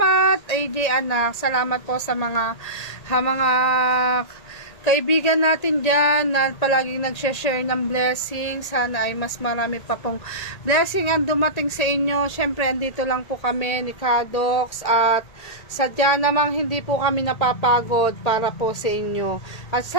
AJ anak. Salamat po sa mga kaibigan natin dyan na palaging nag-share ng blessing. Sana ay mas marami pa pong blessing ang dumating sa inyo. Siyempre, andito lang po kami ni Kadox at sadya namang hindi po kami napapagod para po sa inyo. At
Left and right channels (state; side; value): late; right; 1.8 ms